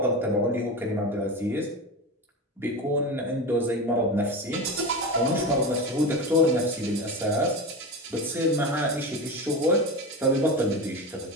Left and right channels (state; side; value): normal; both; correlation 0.23